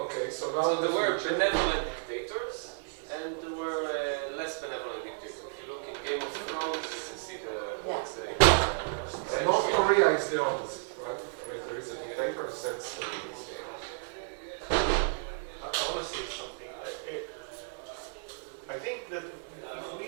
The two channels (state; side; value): silent; left; 56 dB below the other